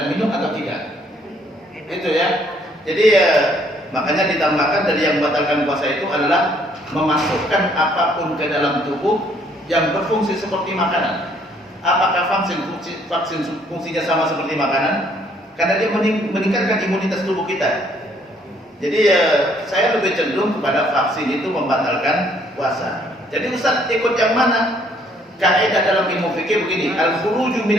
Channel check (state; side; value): normal; both; correlation 0.65